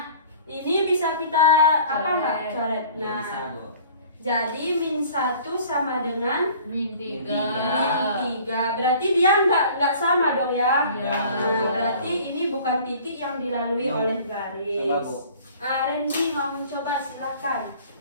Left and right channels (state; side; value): inverted; both; correlation -0.49